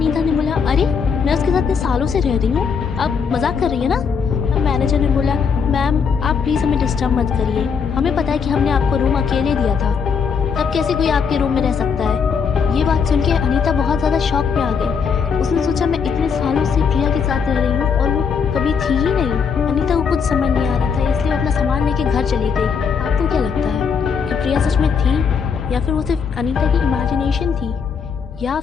ने बोला अरे मैं उसके साथ इतने सालों से रह रही हूँ, आप मजाक कर रही है ना? तब मैनेजर ने बोला मैम आप प्लीज़ हमें डिस्टर्ब मत करिए, हमें पता है कि हमने आपको रूम अकेले दिया था, तब कैसे कोई आपके रूम में रह सकता है? ये बात सुन के अनीता बहुत ज़्यादा शॉक में आ गई। उसने सोचा मैं इतने सालों से प्रिया के साथ रह रही हूँ और वो कभी थी ही नहीं। अनीता को कुछ समझ नहीं आ रहा था, इसलिए वो अपना सामान लेके घर चली गई। आपको क्या लगता है कि प्रिया सच में थी, या फिर वो सिर्फ अनीता की इमेजिनेशन थी, या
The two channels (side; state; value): right; quieter; 6.2 dB